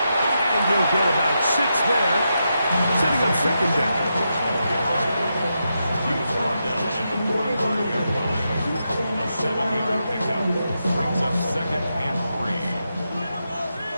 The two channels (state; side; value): inverted; both; correlation -0.86